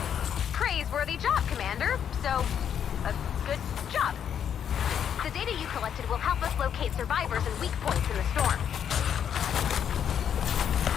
Praiseworthy job, Commander. So, a good job. The data you collected will help us locate survivors and weak points in the storm.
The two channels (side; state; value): right; quieter; 8.6 dB